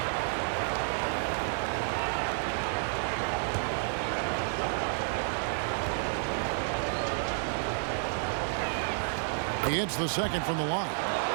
He hits the second from the line.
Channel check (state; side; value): silent; left; 57 dB below the other